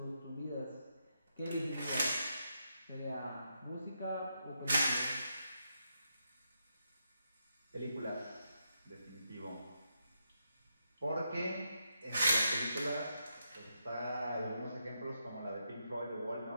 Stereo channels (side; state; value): both; inverted; correlation -0.82